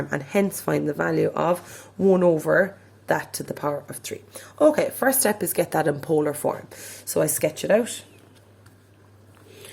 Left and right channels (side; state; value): both; identical; correlation 1.00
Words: and hence find the value of 1 over that to the power of 3. Okay, first step is get that in polar form. So I sketch it out.